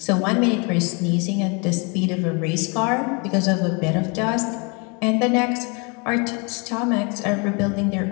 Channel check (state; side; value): quieter; right; 32.0 dB